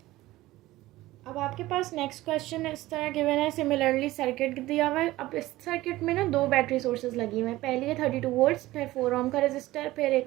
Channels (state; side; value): quieter; left; 17.3 dB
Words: अब आपके पास नेक्स्ट क्वेश्चन इस तरह गिवन है, सिमिलरली सर्किट दिया हुआ है। अब इस सर्किट में ना 2 बैटरी सोर्सेज लगी हुई हैं। पहली है 32 वोल्ट्स, फिर 4 ओम का रजिस्टर, फिर